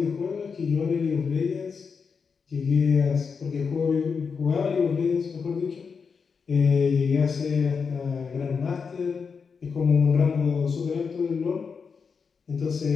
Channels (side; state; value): right; quieter; 5.6 dB